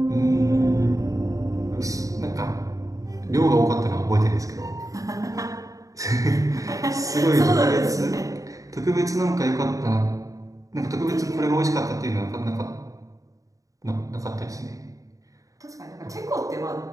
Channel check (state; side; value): late; left; 0.16 ms